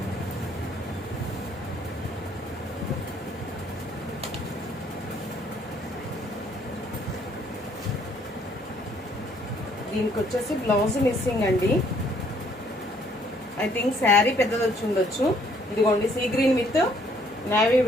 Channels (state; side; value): normal; both; correlation 0.64